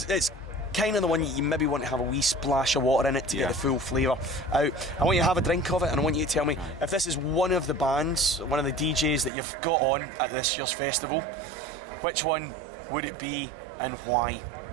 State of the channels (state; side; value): drops out; left; at 9.3 s